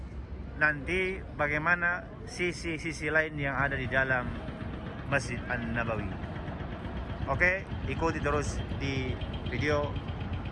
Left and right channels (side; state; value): both; identical; correlation 1.00